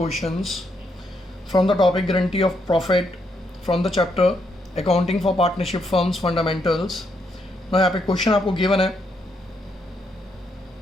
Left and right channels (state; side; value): normal; both; correlation 0.77